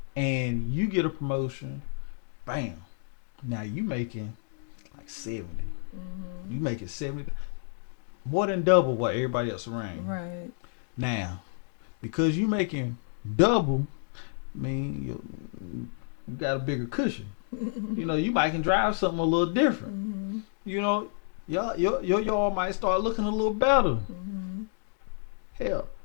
And you get a promotion, bam. Now you making like 70. You making 70, more than double what everybody else around you. Right. Now, because you making double, I mean, you got a bigger cushion. You know, you might can drive something a little different. You know, your yard might start looking a little better. Hell,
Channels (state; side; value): silent; right; digital silence